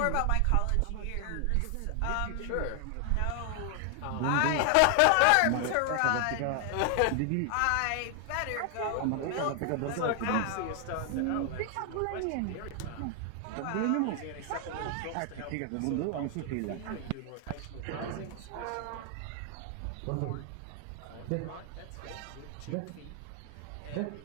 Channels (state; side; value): different; both; correlation 0.00